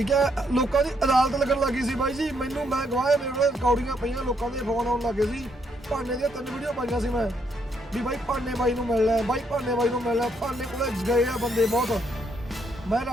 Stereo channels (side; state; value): both; normal; correlation 0.73